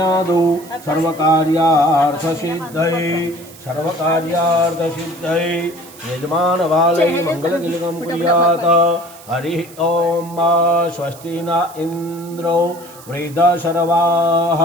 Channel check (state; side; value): noise; right; hiss, 20 dB below the sound